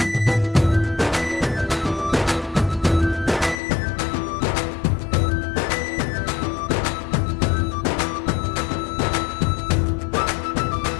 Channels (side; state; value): right; drops out; at 3.6 s